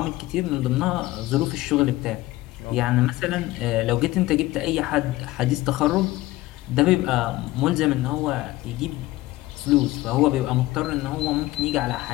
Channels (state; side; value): quieter; right; 17.8 dB